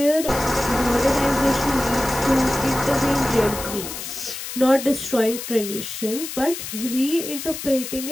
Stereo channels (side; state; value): left; noise; hiss, 8 dB below the sound